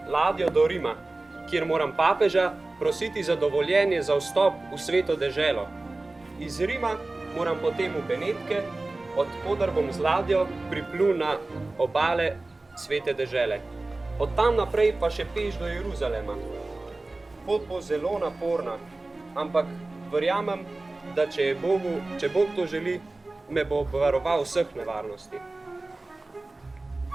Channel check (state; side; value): quieter; left; 3.0 dB